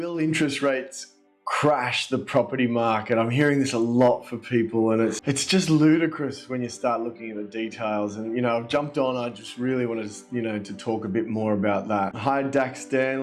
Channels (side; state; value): both; identical; correlation 1.00